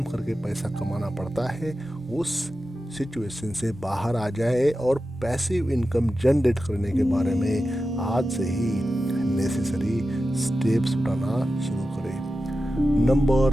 करके पैसा कमाना पड़ता है, उस सिचुएशन से बाहर आ जाए और पैसिव इनकम जनरेट करने के बारे में आज से ही नेसेसरी स्टेप्स उठाना शुरू करें।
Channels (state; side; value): normal; both; correlation 0.92